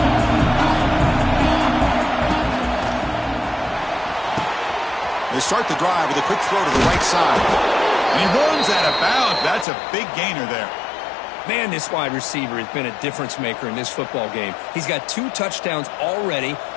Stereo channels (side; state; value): right; drops out; at 9.7 s